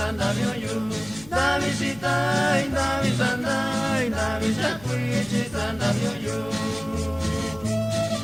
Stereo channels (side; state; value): left; noise; hum, 20 dB below the sound